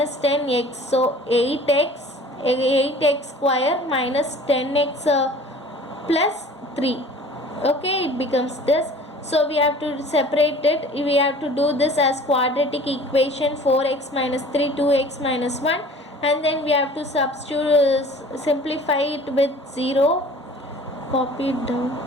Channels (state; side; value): normal; both; correlation 0.46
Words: 10x, so 8x square minus 10x plus 3. Okay, it becomes this. So we have to separate it. We have to do this as quadratic equation, 4x minus 3, 2x minus 1, and then we have to substitute, simplify it with 0. Copy it down.